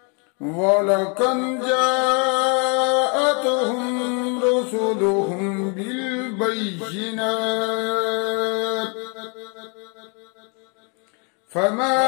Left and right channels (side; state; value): right; quieter; 35.9 dB